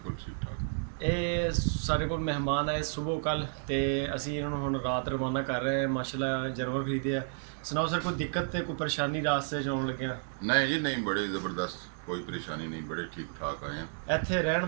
ਠੀਕ ਠਾਕ। ਇਹ ਸਾਡੇ ਕੋਲ ਮਹਿਮਾਨ ਆਏ ਸਵੇਰ ਕੱਲ ਤੇ ਅਸੀਂ ਇਹਨਾਂ ਨੂੰ ਹੁਣ ਰਾਤ ਰਵਾਨਾ ਕਰ ਰਹੇ ਹਾਂ। ਮਾਸ਼ਾਅੱਲਾ ਜਾਨਵਰ ਖਰੀਦੇ ਆ। ਸੁਣਾਓ ਸਰ, ਕੋਈ ਦਿੱਕਤ ਤੇ ਕੋਈ ਪਰੇਸ਼ਾਨੀ ਰਾਸਤੇ 'ਚ ਆਉਣ ਲੱਗਿਆ? ਨਹੀਂ ਜੀ ਨਹੀਂ, ਬੜੇ ਜ਼ਬਰਦਸਤ, ਕੋਈ ਪਰੇਸ਼ਾਨੀ ਨਹੀਂ, ਬੜੇ ਠੀਕ ਠਾਕ ਆਏ ਆ। ਇੱਥੇ ਰਹਿਣ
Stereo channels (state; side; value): silent; left; digital silence